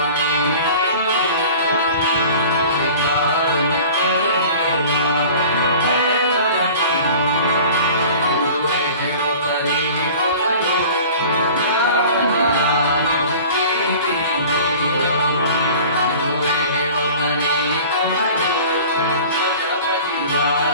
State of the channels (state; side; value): inverted; both; correlation -0.42